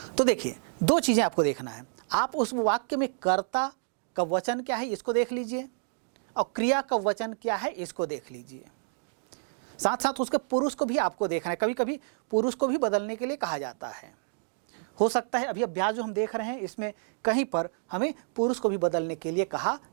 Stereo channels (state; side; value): silent; left; digital silence